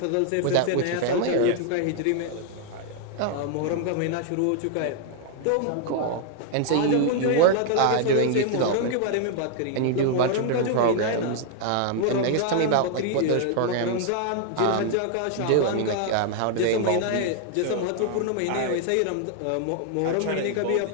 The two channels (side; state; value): both; different; correlation 0.00